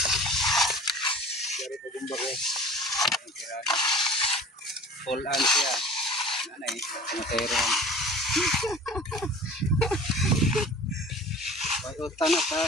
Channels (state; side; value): normal; both; correlation 0.42